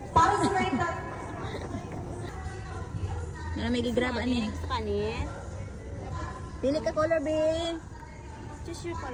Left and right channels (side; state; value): both; identical; correlation 1.00